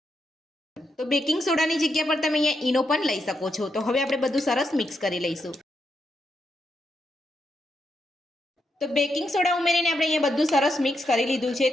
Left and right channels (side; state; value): both; normal; correlation 0.82